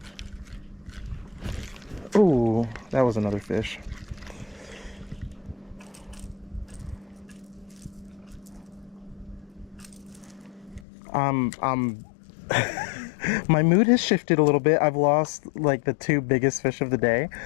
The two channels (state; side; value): drops out; right; at 10.9 s